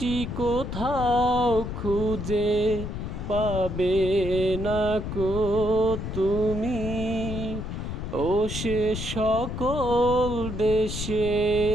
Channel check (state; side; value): noise; left; rumble, 5 dB below the sound